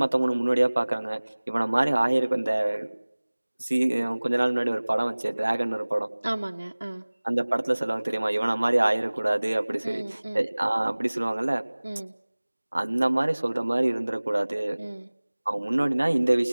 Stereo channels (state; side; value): inverted; both; correlation -1.00